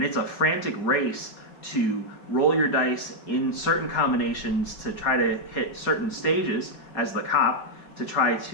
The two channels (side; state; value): right; late; 4.9 ms